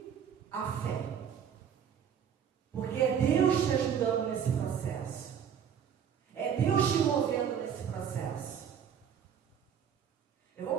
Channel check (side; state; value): left; quieter; 8.2 dB